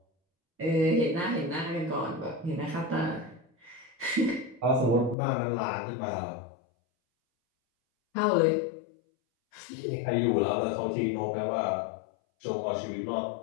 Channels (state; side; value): drops out; right; at 5.2 s